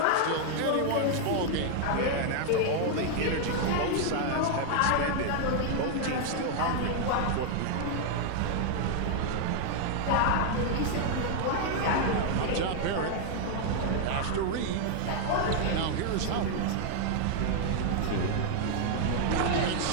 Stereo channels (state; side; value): different; both; correlation 0.00